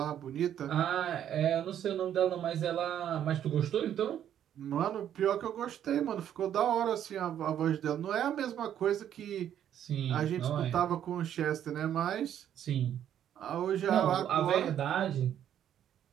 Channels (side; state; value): left; quieter; 10.2 dB